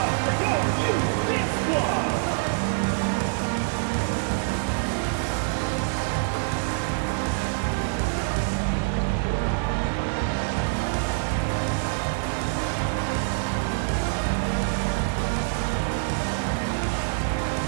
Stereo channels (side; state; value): left; silent; digital silence